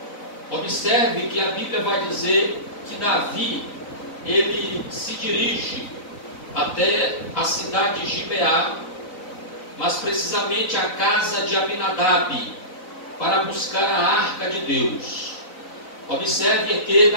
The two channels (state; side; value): late; right; 4.0 ms